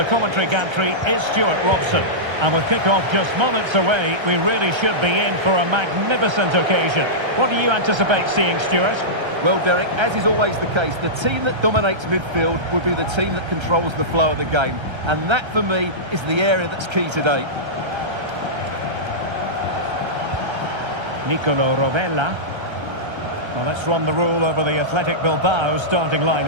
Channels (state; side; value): late; left; 1.3 ms